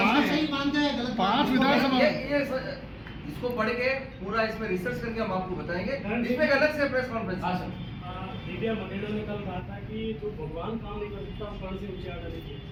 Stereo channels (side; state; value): both; identical; correlation 1.00